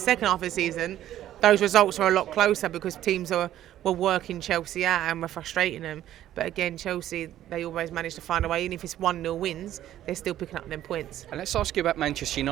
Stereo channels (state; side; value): quieter; left; 12.5 dB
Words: half of the season, those results are a lot closer because teams were working Chelsea out and were frustrating them. But again, Chelsea, they always manage to find a way. Even if it's 1-0 wins, they're still picking up them points. And let's ask you about Manchester